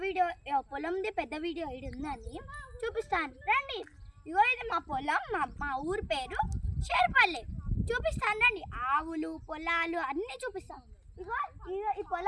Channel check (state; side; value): identical; both; correlation 1.00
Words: వీడియో పొలంది పెద్ద వీడియో ఇది ఉందని చూపిస్తాను రండి. ఇగో ఇది మా పొలం, మా ఊరి పేరు షేర్పల్లి. చూపిస్తాను రండి. ఆవులు పొలాలు అన్నీ చూపిస్తాను. ఇగో ఈ